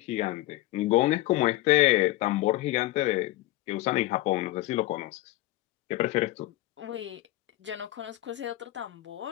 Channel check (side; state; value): right; quieter; 16.9 dB